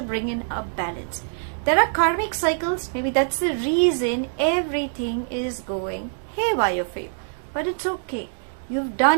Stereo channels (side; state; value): left; silent; digital silence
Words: bring in a balance. There are karmic cycles. Maybe that's the reason everything is going haywire for you. But it's okay. You've